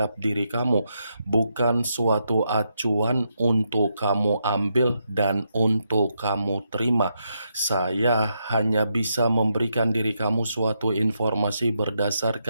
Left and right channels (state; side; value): inverted; both; correlation -0.81